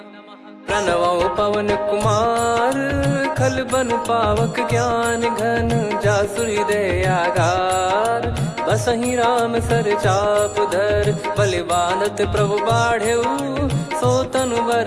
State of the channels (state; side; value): identical; both; correlation 1.00